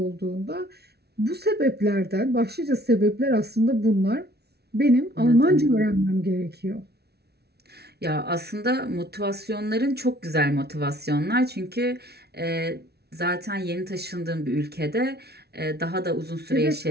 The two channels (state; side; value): late; left; 0.48 ms